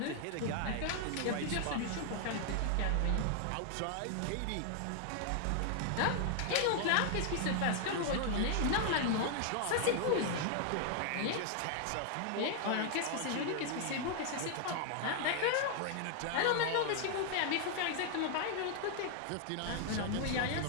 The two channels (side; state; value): both; different; correlation 0.00